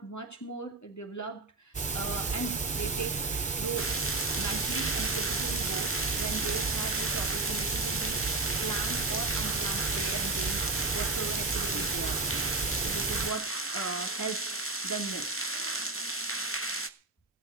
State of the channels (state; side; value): quieter; left; 3.4 dB